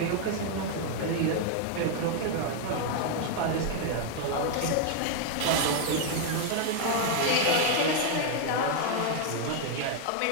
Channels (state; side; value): different; both; correlation 0.00